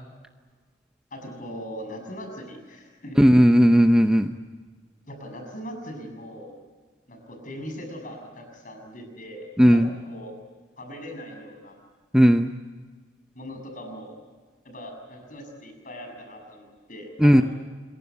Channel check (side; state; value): both; normal; correlation 0.97